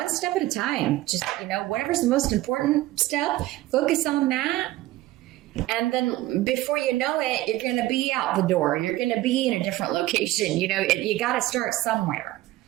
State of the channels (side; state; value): left; quieter; 16.7 dB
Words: step at a time. Just, whatever's the most important step, focus on that. And then before you know it, you're going to be out the door. You're going to be in a different location. You got to start somewhere.